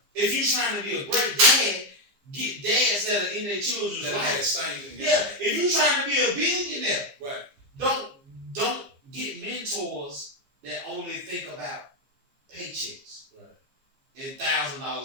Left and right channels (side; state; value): left; late; 15 ms